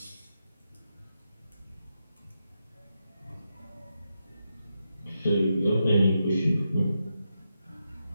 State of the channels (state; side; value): inverted; both; correlation -0.86